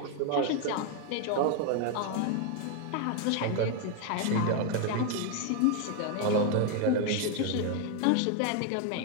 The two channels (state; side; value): different; both; correlation 0.01